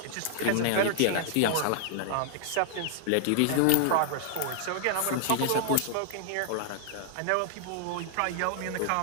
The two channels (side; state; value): both; different; correlation -0.01